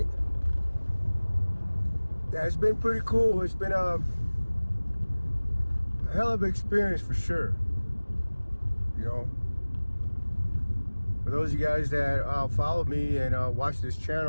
Yeah, it's been pretty cool. It's been a hell of an experience for sure. You know, for those of you guys that follow me and watch this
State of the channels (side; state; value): both; inverted; correlation -1.00